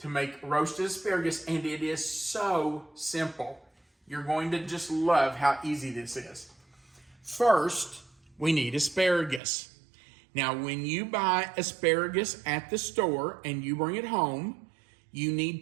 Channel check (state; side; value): drops out; left; at 9.4 s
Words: make roasted asparagus, and it is so simple. You're going to just love how easy this is. First, we need asparagus. Now, when you buy asparagus at the store and you bring it home, you